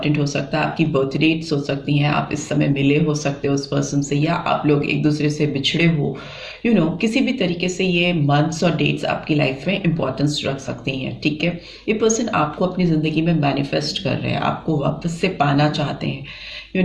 हो सकता है। आपकी बर्थ डेट्स हो सकती हैं, आप इस समय मिले हो सकते हो उस पर्सन से, या आप लोग एक दूसरे से बिछड़े हो, किसी भी तरीके से ये मंथ्स और डेट्स आपकी लाइफ में इंपॉर्टेंस रख सकती हैं। ठीक है, ये पर्सन आपको अपनी ज़िंदगी में मैनिफेस्ट कर रहे हैं, आपको वापस से पाना चाहते हैं।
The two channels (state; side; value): identical; both; correlation 1.00